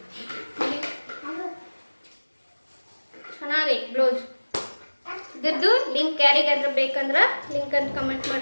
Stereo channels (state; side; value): inverted; both; correlation -1.00